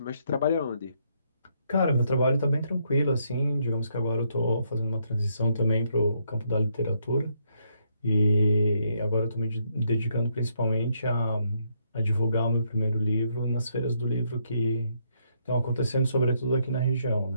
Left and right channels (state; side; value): inverted; both; correlation -0.74